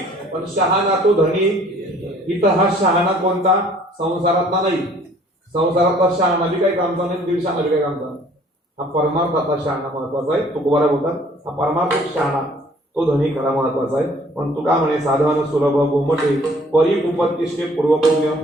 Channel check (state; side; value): normal; both; correlation 0.57